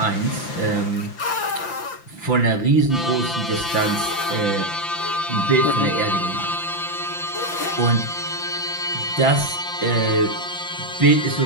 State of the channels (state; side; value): late; right; 5.9 ms